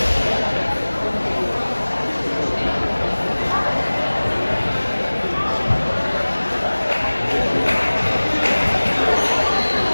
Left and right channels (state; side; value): inverted; both; correlation -1.00